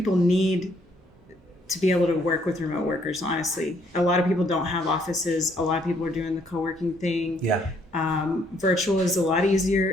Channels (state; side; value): normal; both; correlation 0.68